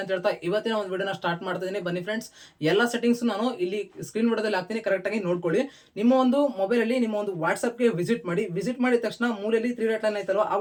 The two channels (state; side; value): identical; both; correlation 1.00